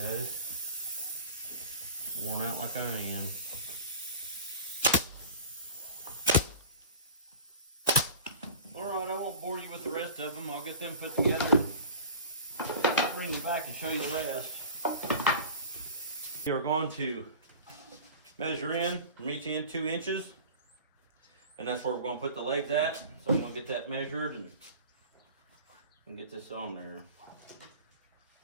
Worn out like I am. Alright, I won't bore you with the rest of them. I'll get them put together and bring them back and show you the rest. We are going to measure in from each end 2 inches. And that's where we're going to put the legs at. So I'm going to get that measured and get this on there.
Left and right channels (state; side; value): inverted; both; correlation -0.38